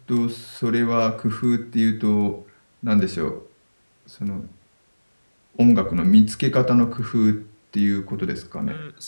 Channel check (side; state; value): both; inverted; correlation -1.00